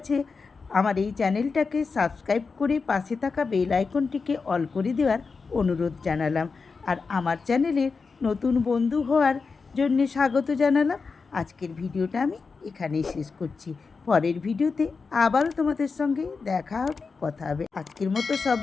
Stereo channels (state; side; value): quieter; right; 4.7 dB